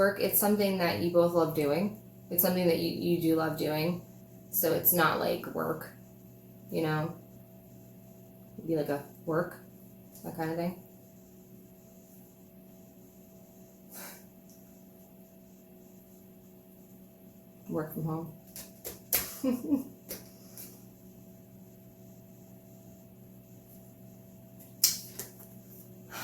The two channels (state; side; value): identical; both; correlation 1.00